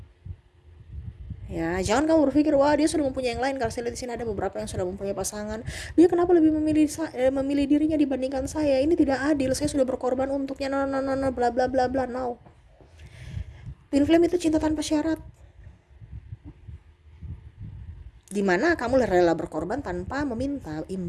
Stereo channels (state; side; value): identical; both; correlation 1.00